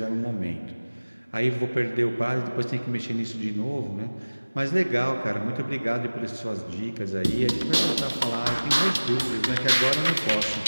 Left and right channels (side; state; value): both; inverted; correlation -1.00